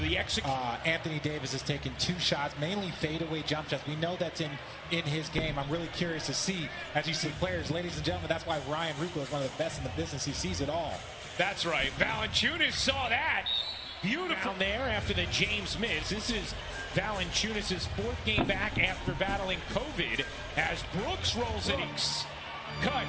the Anthony Davis has taken 2 shots, mainly fadeaway jump shots. We know that's in his game. I'm really curious to see, as you see players, ladies and gentlemen, that's why Ryan Ruocco is one of the best in the business. He sees it all. That's right. Valanciunas saw that. Beautiful down there after the James miss. This is Valanciunas' 4th game back after battling COVID as Brooks rolls it.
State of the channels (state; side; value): identical; both; correlation 1.00